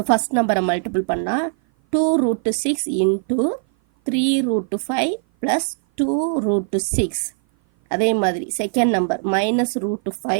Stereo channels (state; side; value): silent; left; 56 dB below the other